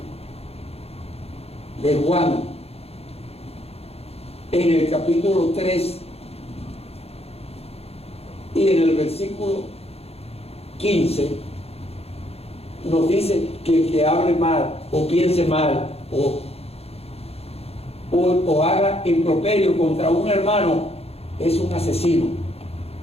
Juan, en el capítulo 3 y en el versículo 15, nos dice que el que hable mal o piense mal o haga improperio contra un hermano es un asesino.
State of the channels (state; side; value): late; right; 0.29 ms